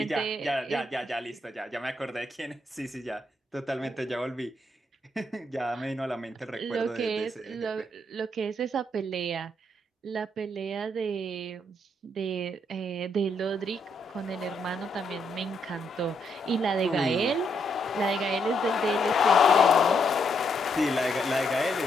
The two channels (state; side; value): normal; both; correlation 0.76